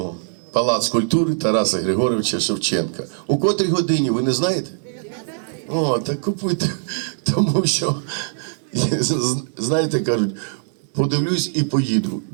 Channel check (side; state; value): left; silent; digital silence